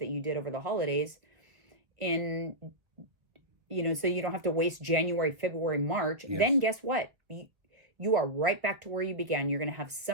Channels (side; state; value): left; late; 1.2 ms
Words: you did over the holidays. So you don't have to waste January, February, March. Yes. Then guess what? You are right back to where you began. You're going to have